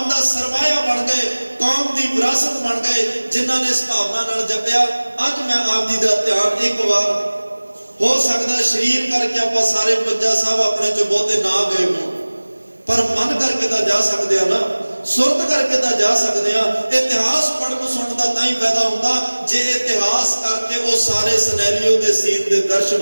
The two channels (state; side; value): inverted; both; correlation -1.00